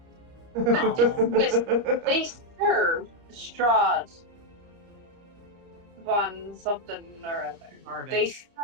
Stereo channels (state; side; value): late; left; 30 ms